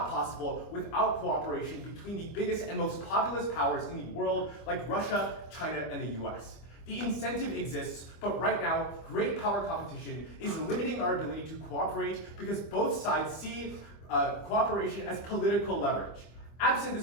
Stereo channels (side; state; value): right; late; 25 ms